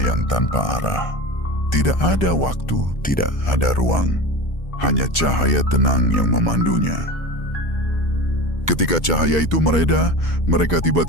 tanpa arah. Tidak ada waktu, tidak ada ruang. Hanya cahaya tenang yang memandunya. Ketika cahaya itu mereda, mereka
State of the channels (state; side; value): late; right; 2.2 ms